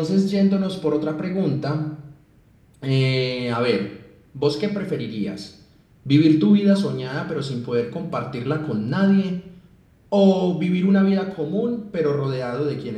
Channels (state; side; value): identical; both; correlation 1.00